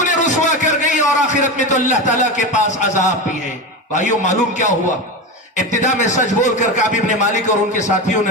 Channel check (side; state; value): both; normal; correlation 0.20